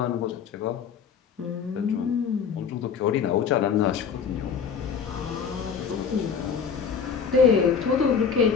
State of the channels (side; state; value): right; quieter; 6.6 dB